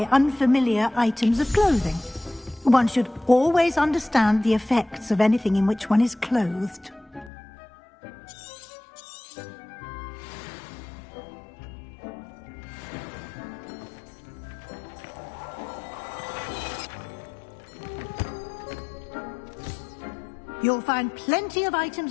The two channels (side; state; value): right; drops out; at 7.3 s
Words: unfamiliar items of clothing. One should always understand the effects of anything in which one is clothed. You'll find plenty of